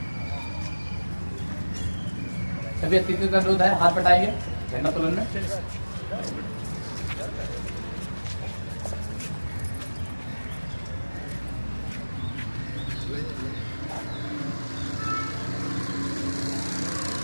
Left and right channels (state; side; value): inverted; both; correlation -1.00